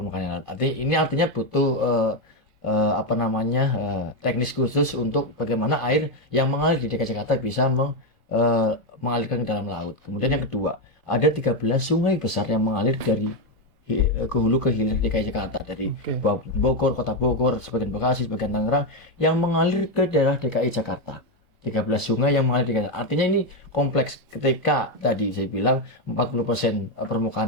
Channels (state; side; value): normal; both; correlation 0.07